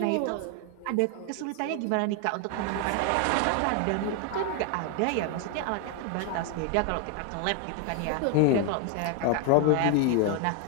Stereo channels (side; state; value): both; different; correlation 0.00